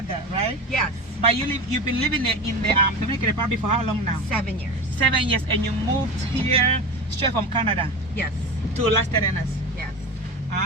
right? Yes. But you've been living in the Dominican Republic for how long now? 7 years. 7 years, and you moved here straight from Canada Yes. to Las Terrenas. Yes.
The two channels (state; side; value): normal; both; correlation 0.27